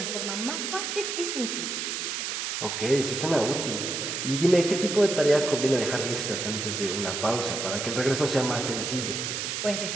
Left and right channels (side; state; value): right; noise; hiss, 3 dB below the sound